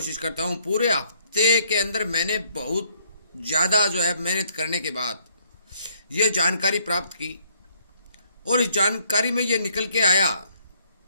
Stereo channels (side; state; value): both; inverted; correlation -0.67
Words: करता हूं। पूरे हफ्ते के अंदर मैंने बहुत ज़्यादा मेहनत करने के बाद ये जानकारी प्राप्त की और इस जानकारी में ये निकल के आया